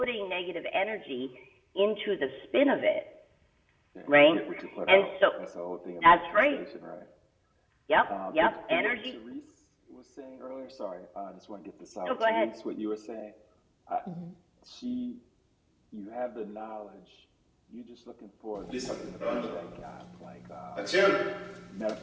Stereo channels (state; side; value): identical; both; correlation 1.00